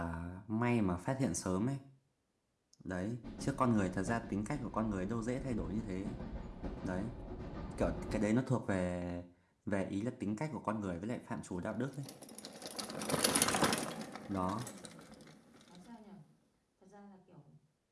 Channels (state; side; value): identical; both; correlation 1.00